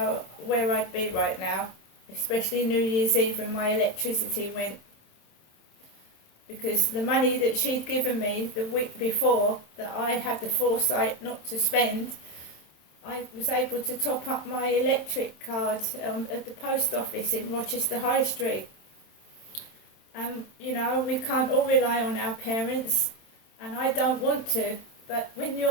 where I'd be right now, especially New Year's Eve when my electricity went, because the money that she'd given me the week before that I had the foresight not to spend, I was able to top up my electric card at the post office in Rochester High Street. You know, we can't all rely on our parents, and I don't want to, but when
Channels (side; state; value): right; late; 27 ms